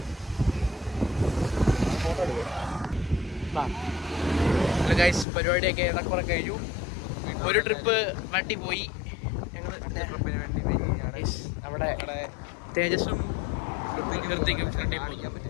Hello guys, പരിപാടിയൊക്കെ ഏറെക്കുറെ കഴിഞ്ഞു. ഒരു ട്രിപ്പ് വണ്ടി പോയി. ഞങ്ങൾ അവിടെ തേജസ്സും കൃത്യക്കും കാണിക്കാൻ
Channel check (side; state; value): right; drops out; at 5.2 s